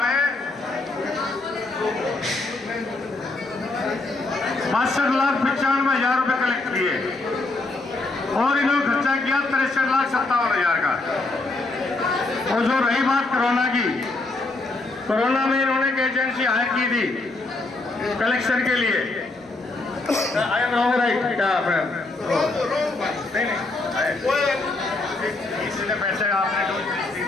में 62,95,000 रुपए कलेक्ट किए और इन्होंने खर्चा किया 63,57,000 का। और जो रही बात कोरोना की, कोरोना में इन्होंने एक एजेंसी हायर की थी कलेक्शन के लिए। आई एम रॉन्ग राइट क्या इसने पैसे आपने दी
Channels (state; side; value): quieter; right; 3.2 dB